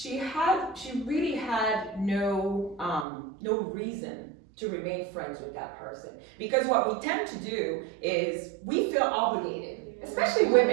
really had no reason to remain friends with that person. Because what we tend to do is we feel obligated. Especially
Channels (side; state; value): left; drops out; at 3.1 s